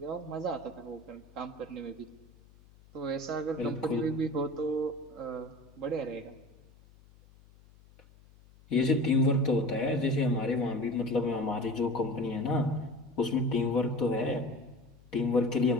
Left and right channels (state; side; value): noise; left; hum, 26 dB below the sound